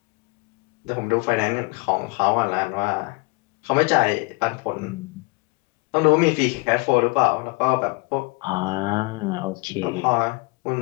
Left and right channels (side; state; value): right; quieter; 27.6 dB